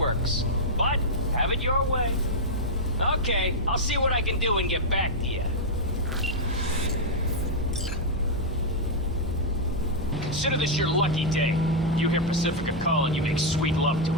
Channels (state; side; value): normal; both; correlation -0.04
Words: But have it your way. Okay, I'll see what I can do and get back to you. Consider this your lucky day. You hear Pacifica calling, you make sweet love to